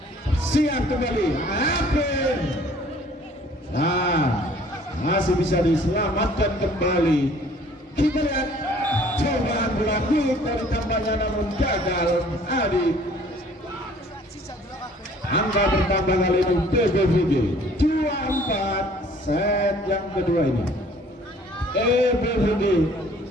Siap kembali Ape. Nah masih bisa diselamatkan kembali. Kita lihat cobaan bola dari tambahnya namun gagal Adi. Angka bertambah kali ini PBVG 2-4 set yang kedua ini PBVG.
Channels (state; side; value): normal; both; correlation 0.55